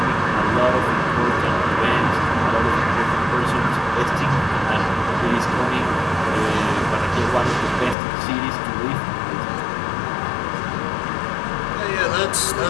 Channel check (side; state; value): right; drops out; at 8.0 s